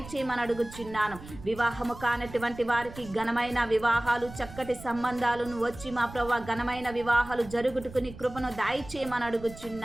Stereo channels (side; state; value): right; noise; rumble, 15 dB below the sound